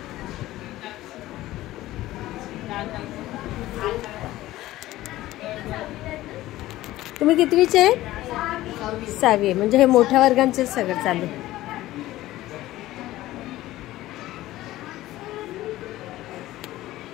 तुम्ही कितवीचे आहे? 6वी. म्हणजे हे मोठ्या वर्गांचे सगळं चालू.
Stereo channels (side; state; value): right; quieter; 16.0 dB